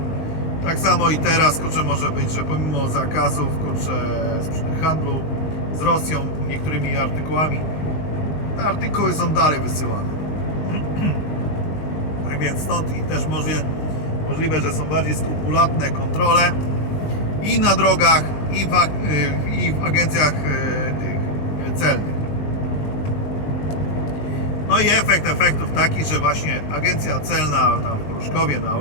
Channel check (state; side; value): late; right; 20 ms